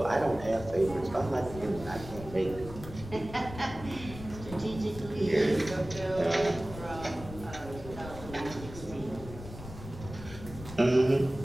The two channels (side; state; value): left; noise; rumble, 13 dB below the sound